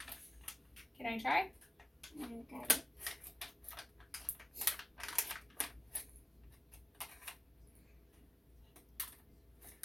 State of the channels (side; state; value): both; normal; correlation 0.97